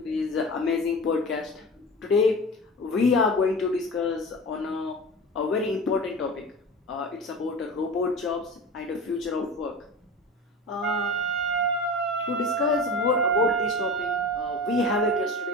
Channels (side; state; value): both; normal; correlation 0.32